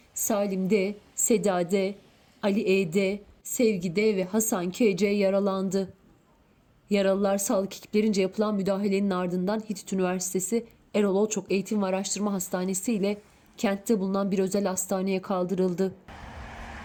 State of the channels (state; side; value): identical; both; correlation 1.00